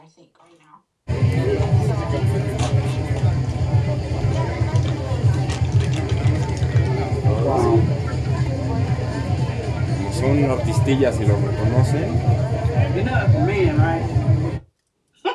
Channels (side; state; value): both; identical; correlation 1.00